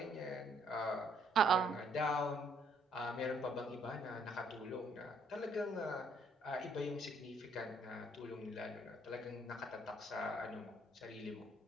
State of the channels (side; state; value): both; normal; correlation 0.67